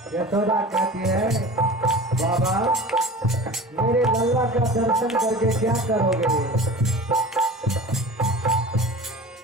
यशोदा कहती है बाबा मेरे लल्ला का दर्शन करके क्या करोगे?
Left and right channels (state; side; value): normal; both; correlation 0.37